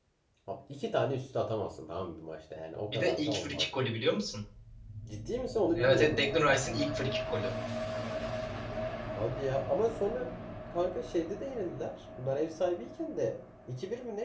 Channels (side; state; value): both; identical; correlation 1.00